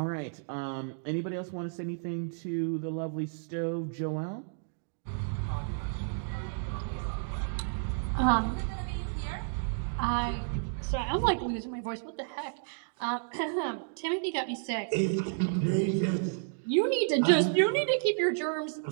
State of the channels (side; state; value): left; silent; digital silence